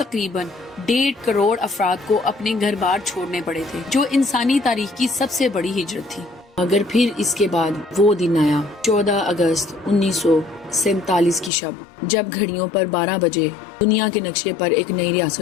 1.5 کروڑ افراد کو اپنے گھر بار چھوڑنے پڑے تھے، جو انسانی تاریخ کی سب سے بڑی ہجرت تھی. مگر پھر اس کے بعد وہ دن آیا، 14 اگست 1947 کی شب، جب گھڑیوں پر 12 بجے دنیا کے نقشے پر ایک نئی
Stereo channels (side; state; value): right; drops out; at 11.5 s